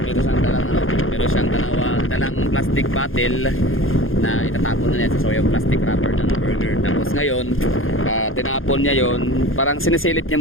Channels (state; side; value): late; right; 0.60 ms